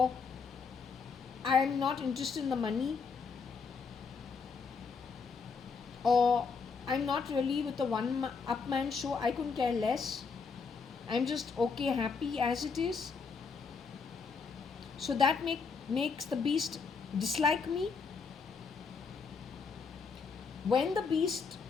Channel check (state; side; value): quieter; right; 5.2 dB